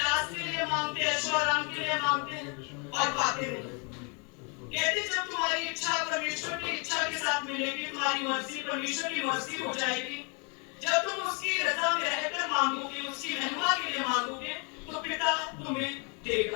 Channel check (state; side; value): quieter; right; 35.0 dB